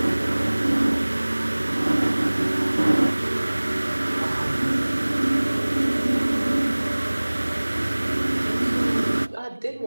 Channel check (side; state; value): both; inverted; correlation -1.00